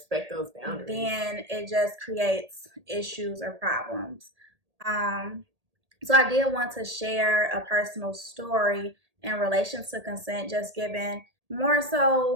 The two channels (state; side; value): late; left; 1.8 ms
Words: those boundaries, then it just creates issues or problems. So I did want to share a personal story in relation to consent, just given more